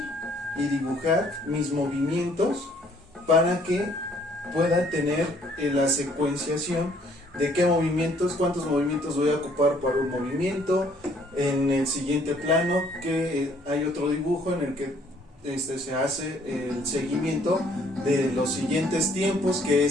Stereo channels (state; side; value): normal; both; correlation 0.62